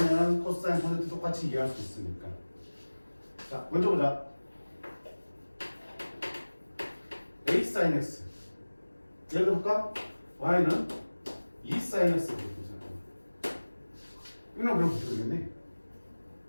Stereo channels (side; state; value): both; inverted; correlation -1.00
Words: 코사인, 탄젠트 똑같이 이해할 수 있으니까. 자, 먼저 보자. a sin x. 예를 들어볼까? y는 2 sin x. 이건 그럼 어떻게 되겠니?